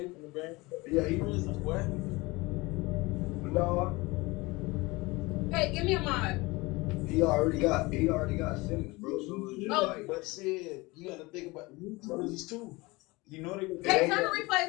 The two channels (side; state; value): right; quieter; 23.1 dB